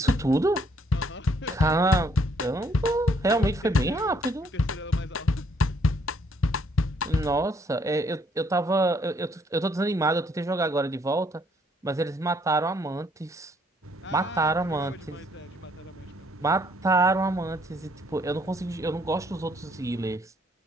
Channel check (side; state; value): both; normal; correlation 0.67